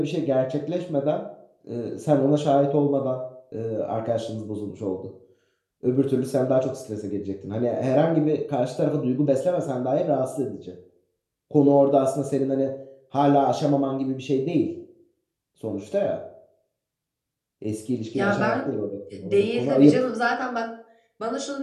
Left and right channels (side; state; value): both; identical; correlation 1.00